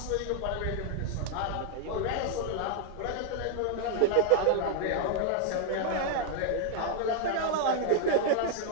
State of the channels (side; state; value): both; different; correlation 0.00